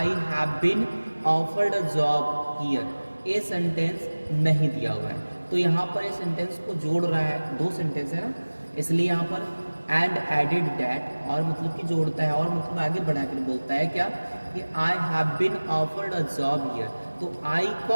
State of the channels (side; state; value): both; inverted; correlation -1.00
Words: have been offered a job here, ये सेंटेंस नहीं दिया हुआ है, तो यहाँ पर ये सेंटेंस को जोड़ रहा है, दो सेंटेंस है ना, इसलिए यहाँ पर एंड एडिड डैट, और मतलब कि जोड़ता है, और मतलब आगे बढ़ा कर बोलता है क्या कि I have been offered a job here. तो आई